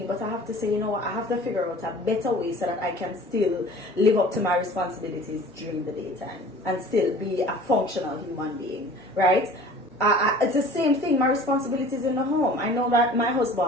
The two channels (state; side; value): normal; both; correlation 0.45